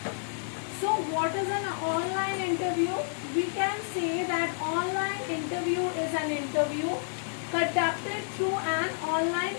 So what is an online interview? We can say that online interview is an interview conducted through an online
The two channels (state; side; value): silent; right; digital silence